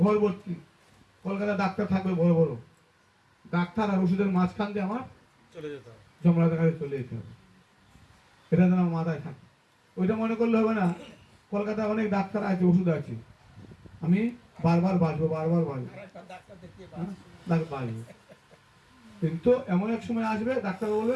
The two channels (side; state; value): both; identical; correlation 1.00